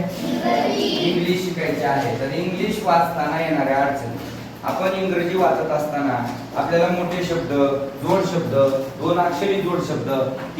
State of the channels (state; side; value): identical; both; correlation 1.00